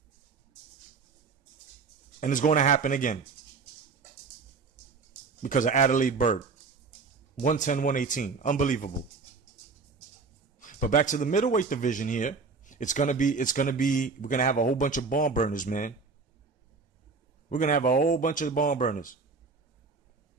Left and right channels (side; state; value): left; quieter; 4.7 dB